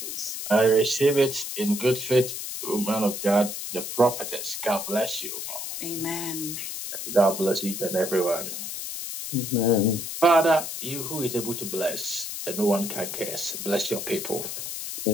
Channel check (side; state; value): left; noise; hiss, 6 dB below the sound